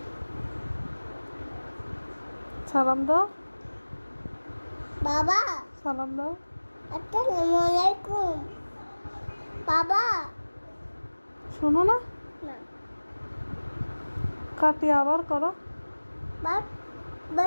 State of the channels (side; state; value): both; inverted; correlation -1.00